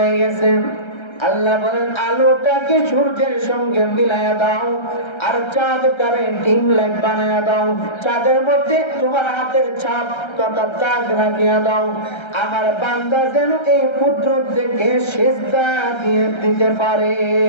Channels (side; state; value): right; late; 1.3 ms